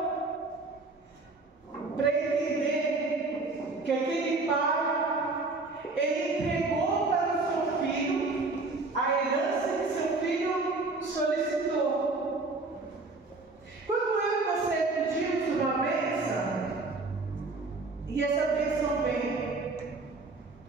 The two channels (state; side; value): quieter; left; 3.5 dB